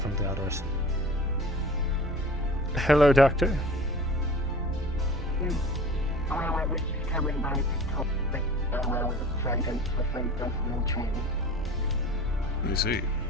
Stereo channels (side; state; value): both; normal; correlation 0.41